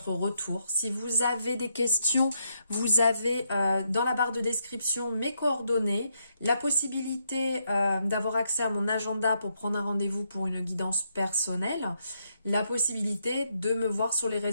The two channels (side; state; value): both; inverted; correlation -0.78